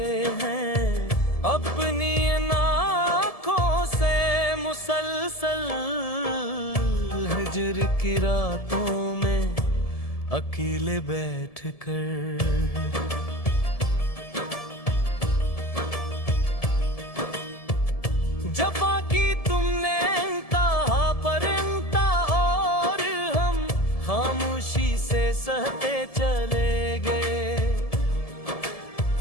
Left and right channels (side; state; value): right; late; 1.7 ms